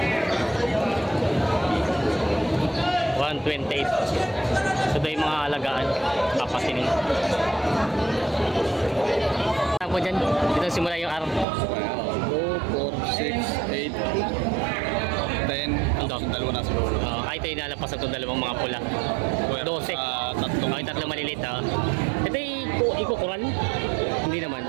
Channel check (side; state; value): left; drops out; at 11.5 s